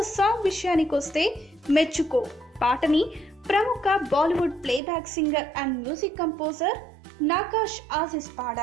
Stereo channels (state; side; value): drops out; left; at 4.8 s